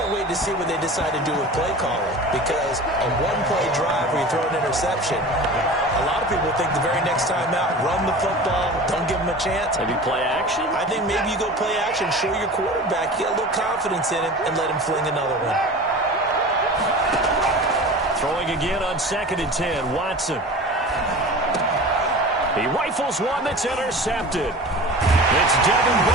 wait to see what they decide to do with play calling. Because a 1-play drive where you throw an interception, a lot of people think the very next time out, run the football, don't give them a chance. Maybe play action? I think maybe you go play action, show your quarterback, get a little confidence in him, and let him fling another one. Throwing again on 2nd and 10, Watson. He rifles one that's intercepted. It's Devin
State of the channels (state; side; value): normal; both; correlation 0.36